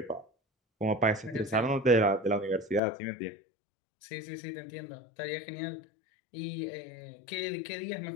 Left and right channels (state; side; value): drops out; right; at 2.8 s